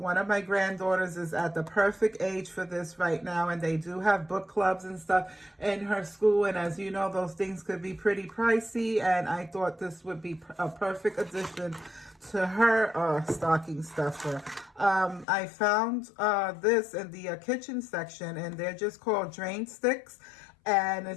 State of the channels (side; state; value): right; drops out; at 15.2 s